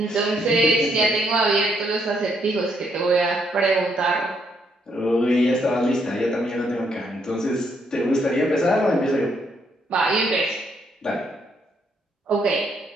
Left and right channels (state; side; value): normal; both; correlation 0.73